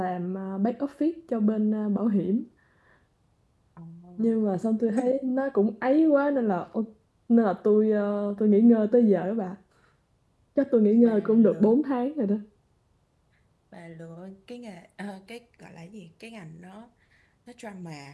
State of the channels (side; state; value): both; identical; correlation 1.00